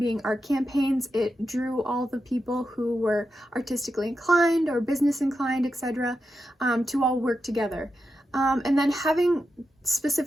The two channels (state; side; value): normal; both; correlation 0.88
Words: art campaigns, it drew all the people who were artistically inclined or business inclined, etc., to all work together. And then having